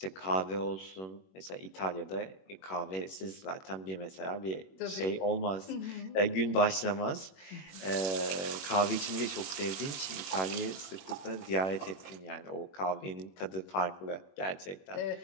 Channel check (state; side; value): late; right; 21 ms